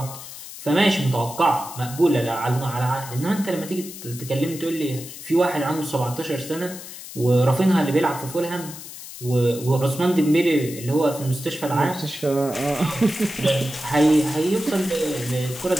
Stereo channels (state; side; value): noise; left; hiss, 13 dB below the sound